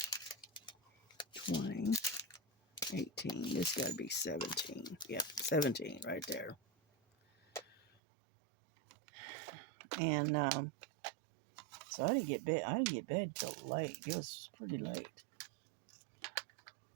20, 18, this got to be 17, yep, 17 right there. And so I didn't get bed till late. It was pretty late.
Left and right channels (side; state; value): left; drops out; at 7.9 s